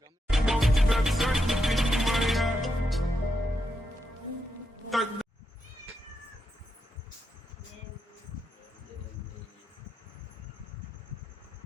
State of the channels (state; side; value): normal; both; correlation 0.84